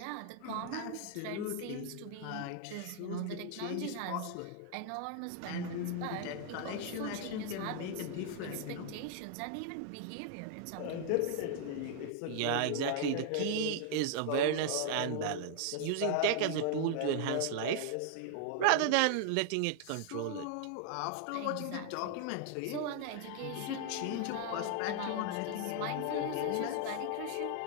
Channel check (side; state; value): both; different; correlation 0.00